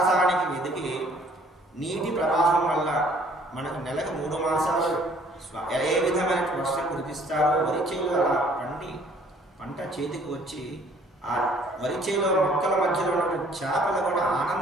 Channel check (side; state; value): both; normal; correlation 0.58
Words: వెదికి నీటి ప్రవాహం వల్ల మనకు నెలకు 3 మాసాలు ఏ విధమైన వర్షం కురిపిస్తారో వరిచేలు అలా పండి పంట చేతికి వచ్చి ఆ వరిచేలో మొక్కల మధ్యలో ఉన్న చేపలు కూడా